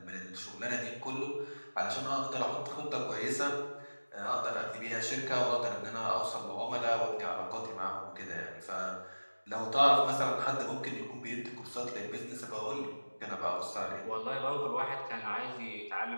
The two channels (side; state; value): both; inverted; correlation -1.00